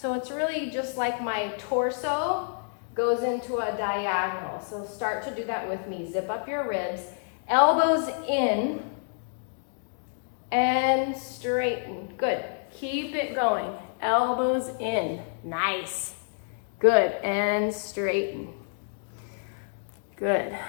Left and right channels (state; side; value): silent; right; digital silence